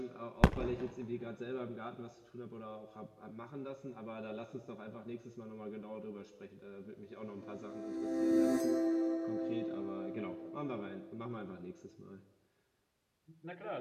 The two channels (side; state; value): both; identical; correlation 1.00